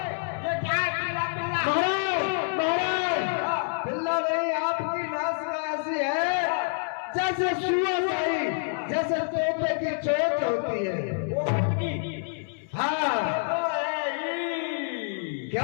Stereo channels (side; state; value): right; silent; digital silence